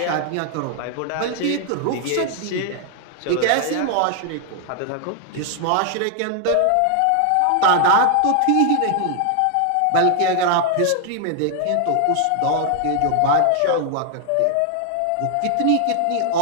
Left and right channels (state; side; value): different; both; correlation 0.00